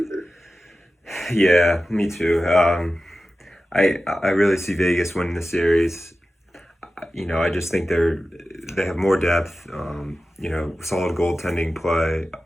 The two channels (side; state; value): both; normal; correlation 0.94